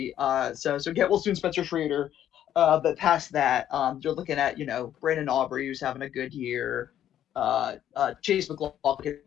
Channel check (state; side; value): quieter; right; 11.0 dB